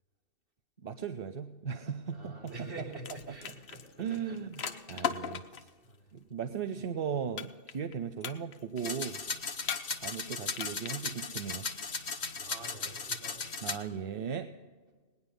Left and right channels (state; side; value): late; right; 2.6 ms